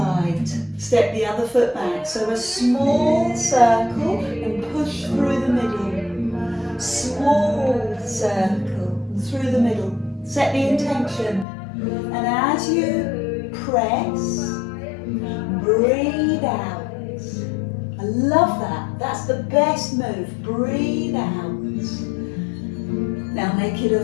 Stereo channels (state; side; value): drops out; right; at 11.5 s